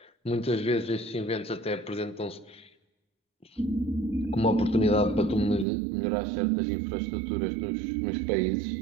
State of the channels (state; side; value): drops out; left; at 5.7 s